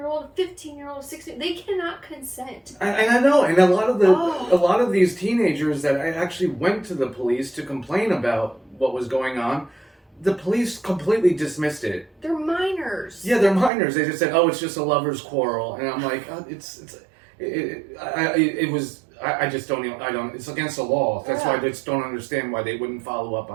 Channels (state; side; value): drops out; left; at 13.7 s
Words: 15-year-old, 16, they cannot consent. And I know, and a lot of these teenagers that I actually went to the police to complain about what was going on, the police completely dismissed it. They're minors. Yeah, they're minors. They just said, "Oh, it's just a lover's quarrel," and I'm like, I just don't even, it's against the law. That's why I just don't understand why they wouldn't follow up